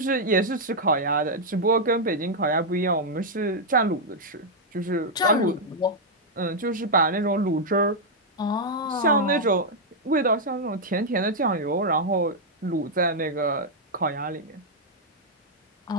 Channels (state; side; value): normal; both; correlation -0.03